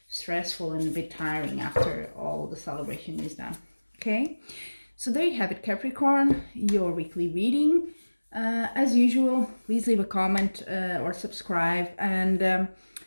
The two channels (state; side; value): inverted; both; correlation -1.00